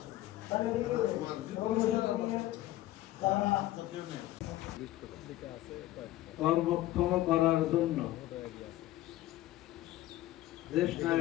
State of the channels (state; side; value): quieter; right; 15.4 dB